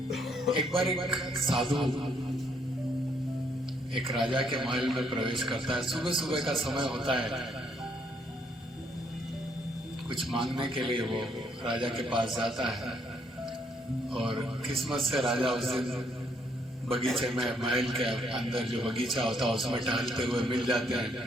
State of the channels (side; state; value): both; normal; correlation 0.70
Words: एक बार एक साधु एक राजा के महल में प्रवेश करता है। सुबह सुबह का समय होता है, कुछ मांगने के लिए वो राजा के पास जाता है और किस्मत से राजा उस दिन बगीचे में, महल के अंदर जो बगीचा होता है उसमें टहलते हुए मिल जाते हैं।